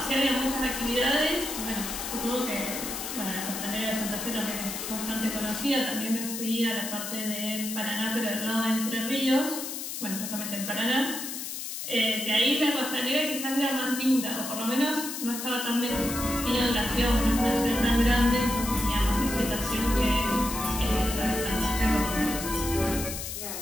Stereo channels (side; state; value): left; noise; hiss, 6 dB below the sound